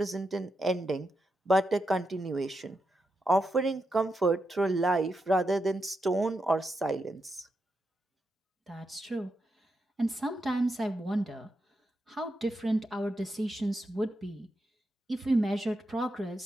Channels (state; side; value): normal; both; correlation 0.85